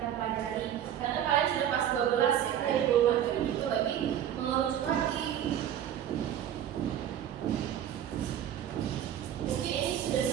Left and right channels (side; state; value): left; quieter; 10.4 dB